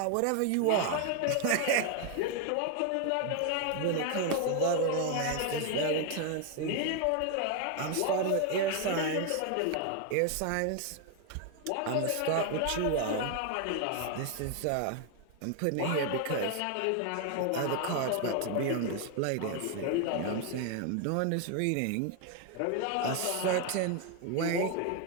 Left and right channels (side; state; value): both; different; correlation 0.01